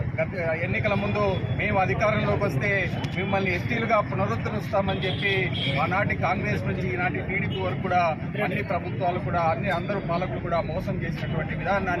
ఎన్నికల ముందు మేము అధికారంలోకి వస్తే మిమ్మల్ని ఎస్టీలుగా పునరుద్ధరిస్తామని చెప్పి ఆనాటి కాంగ్రెస్ నుంచి ఈనాటి టీడీపీ వరకు కూడా అన్ని ప్రభుత్వాలు కూడా అందరూ పాలకులు కూడా మోసం చేసినటువంటి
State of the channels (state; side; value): identical; both; correlation 1.00